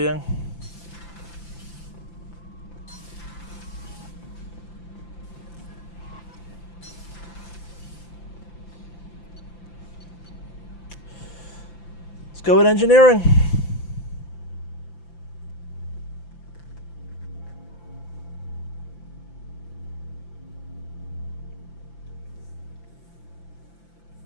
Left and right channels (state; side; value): late; right; 5.9 ms